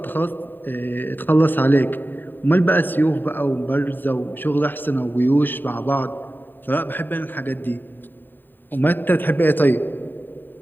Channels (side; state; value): right; late; 0.092 ms